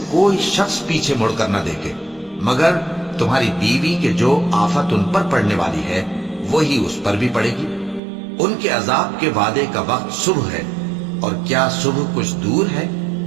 کوئی شخص پیچھے مڑ کر نہ دیکھے، مگر تمہاری بیوی کے جو آفت ان پر پڑنے والی ہے وہی اس پر بھی پڑے گی۔ ان کے عذاب کے وعدے کا وقت صبح ہے، اور کیا صبح کچھ دور ہے؟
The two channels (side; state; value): left; drops out; at 8.0 s